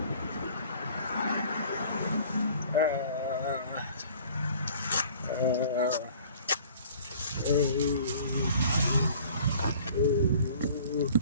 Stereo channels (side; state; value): both; inverted; correlation -0.50